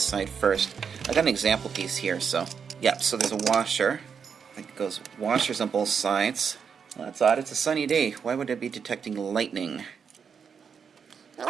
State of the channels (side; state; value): left; quieter; 6.6 dB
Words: side first. I got an example piece here, so yep. So there's a washer. I think it goes washers on both sides. Well, that's odd. It's a sunny day. Why would it be detecting lightning?